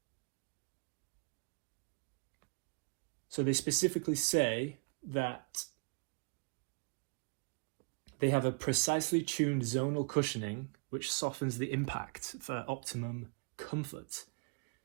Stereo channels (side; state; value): left; quieter; 37.1 dB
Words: So they specifically say that they have a precisely tuned zonal cushioning which softens the impact for optimum comfort.